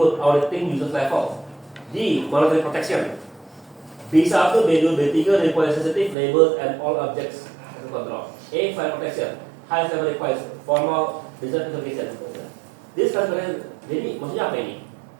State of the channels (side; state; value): left; drops out; at 6.2 s